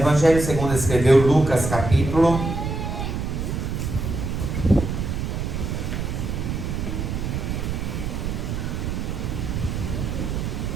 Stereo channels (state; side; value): noise; right; rumble, 3 dB below the sound